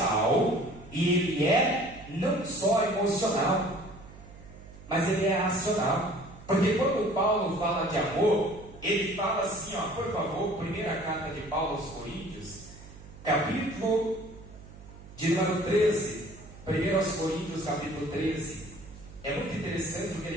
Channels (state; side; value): noise; right; hum, 18 dB below the sound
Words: E ele é não só emocional, mas ele é racional. Porque quando Paulo fala de amor, ele fala assim, ó, por favor, primeira carta de Paulo aos Coríntios, capítulo de número 13, 1 aos Coríntios, capítulo 13. É muito interessante o que